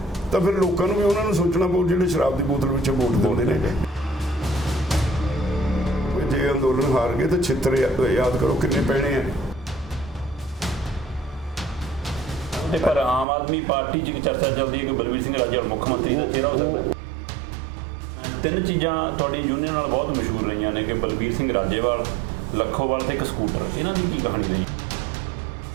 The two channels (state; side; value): drops out; left; at 13.2 s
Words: तो फिर लोगों को भी उन्होंने सोचना पऊ जिहड़े शराब की बोतल पिछे वोट देते हैं जे अंदोलन हार गए तो छित्र याद करो कितने पैने हैं पर आम आदमी पार्टी च चर्चा चलती है कि बलबीर सिंह राजेवाल मुख्यमंत्री का चेहरा हो सकता है तीन चीज़ां तुहाडी यूनियन नाल बहुत मशहूर रही ने कि बलबीर सिंह राजेवाल लखोवाल ते एक स्कूटर इन्हां दी की कहानी रही